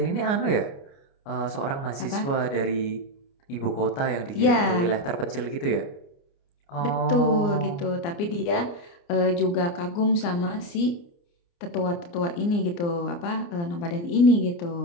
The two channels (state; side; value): late; right; 29 ms